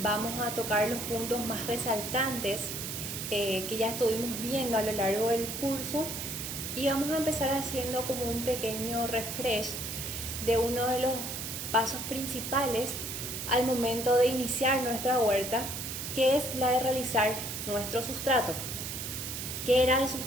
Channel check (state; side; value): noise; right; hiss, 5 dB below the sound